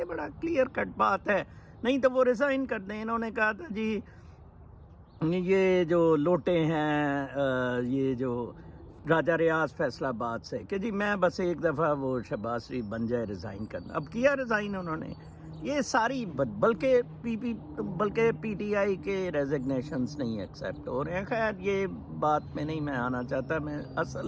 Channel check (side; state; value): both; identical; correlation 1.00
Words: بڑا کلیئر کٹ بات ہے۔ نہیں تو وہ ریزائن کر دیں۔ انہوں نے کہا تھا جی یہ جو لوٹے ہیں، یہ جو راجہ ریاض فیصلہ آباد سے، کہ جی میں بس ایک دفعہ وہ شہباز شریف بن جائے ریزائن کرنا۔ اب کیا ریزائن انہوں نے، یہ ساری بلکہ پی ٹی آئی کے ریزگنیشنز نہیں ایکسیپٹ ہو رہے ہیں۔ خیر یہ بات میں نہیں میں آنا چاہتا، میں